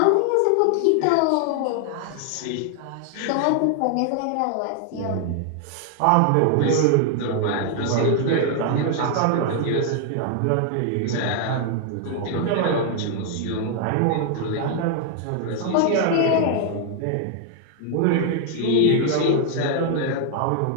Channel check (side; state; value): both; different; correlation 0.00